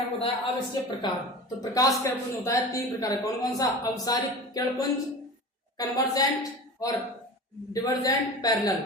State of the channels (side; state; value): both; normal; correlation 0.33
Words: आपको बताया। अब इसके प्रकार, तो प्रकाश किरणपुंज होता है 3 प्रकार, कौन कौन सा, अवसारिक किरणपुंज, कन्वर्जेंट और डिवर्जेंट, पैरेलल,